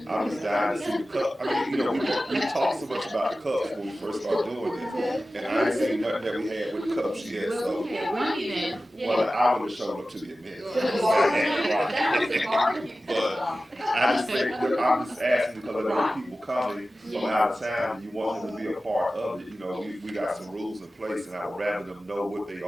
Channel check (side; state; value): both; normal; correlation 0.95